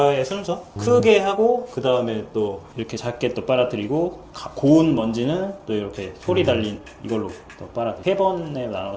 순서 크게 하고 그 다음에 또 이렇게 작게 또 빨아들이고 고운 먼지는 또 이렇게 소리 달린 이걸로 또 빨아들이고 세 번에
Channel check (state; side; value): identical; both; correlation 1.00